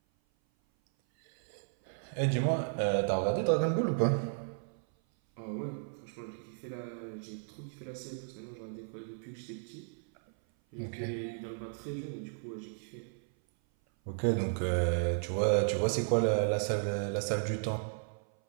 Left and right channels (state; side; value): silent; left; 55 dB below the other